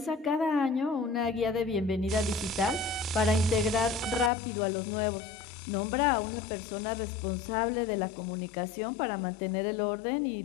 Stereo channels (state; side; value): drops out; right; at 4.3 s